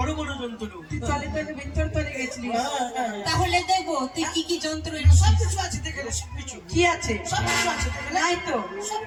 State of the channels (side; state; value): both; identical; correlation 1.00